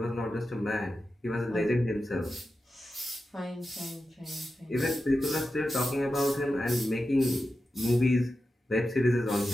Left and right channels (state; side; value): normal; both; correlation 0.91